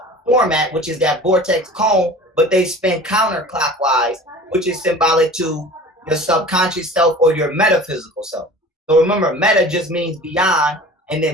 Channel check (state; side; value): normal; both; correlation 0.41